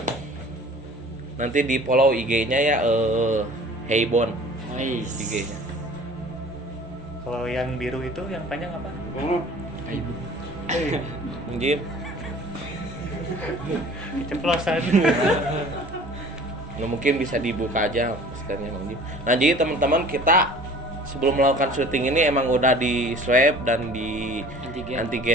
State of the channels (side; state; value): both; normal; correlation 0.46